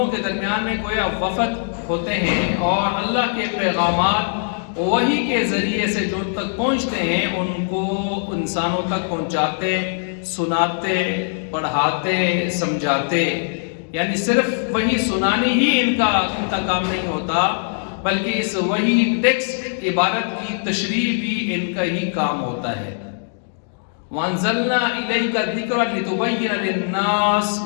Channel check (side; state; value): right; silent; digital silence